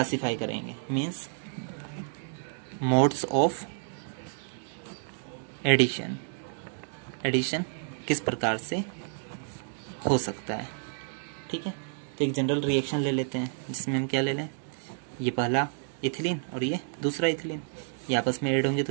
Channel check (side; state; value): left; silent; digital silence